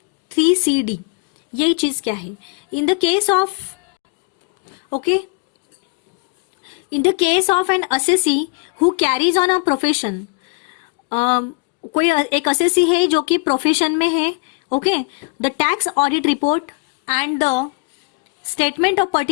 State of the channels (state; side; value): quieter; right; 29.4 dB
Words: 3CD, यही चीज क्या है, इन the case of, okay, in the case of N assessee who carries on a profession, कोई एक असेसी है जो कि प्रोफेशन में है. Okay, the tax audit report and the statement of